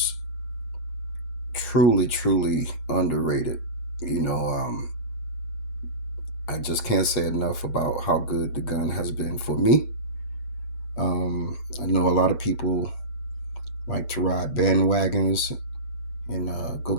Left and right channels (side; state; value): right; late; 7.5 ms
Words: truly underrated. I just can't say enough about how good the gun has been for me. I know a lot of people like to ride bandwagons and go